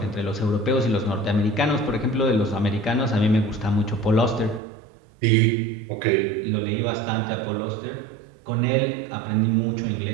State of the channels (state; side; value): drops out; left; at 4.6 s